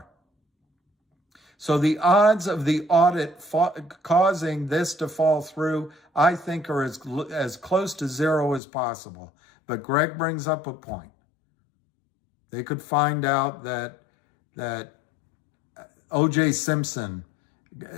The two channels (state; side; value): drops out; right; at 8.6 s